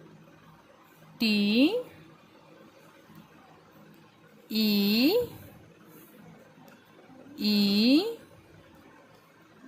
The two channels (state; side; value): identical; both; correlation 1.00